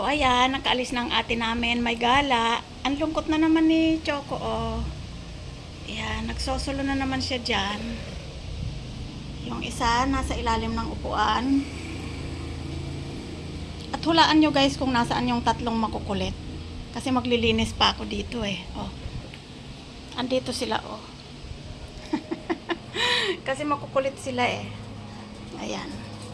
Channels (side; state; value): both; identical; correlation 1.00